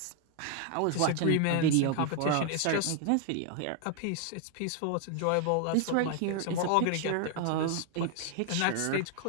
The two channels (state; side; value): different; both; correlation 0.00